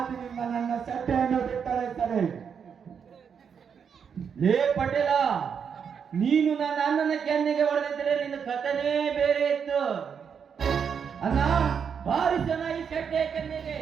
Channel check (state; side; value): quieter; left; 7.0 dB